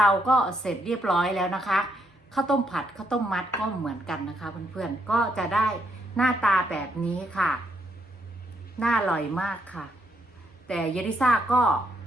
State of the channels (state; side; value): normal; both; correlation 0.76